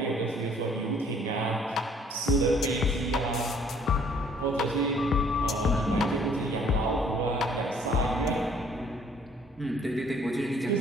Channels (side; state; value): both; normal; correlation 0.60